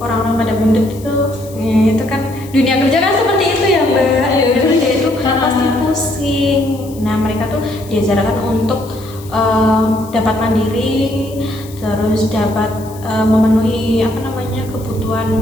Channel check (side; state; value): left; noise; hiss, 21 dB below the sound